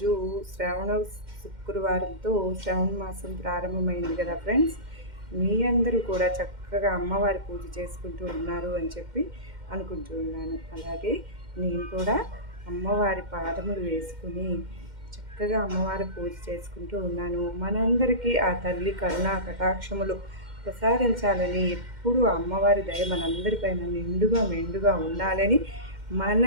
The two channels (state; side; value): late; left; 2.1 ms